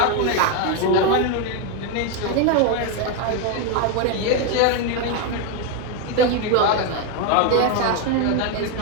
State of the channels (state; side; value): different; both; correlation 0.01